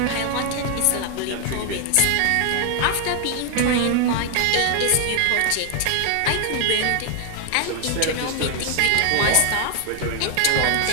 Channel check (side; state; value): both; different; correlation 0.00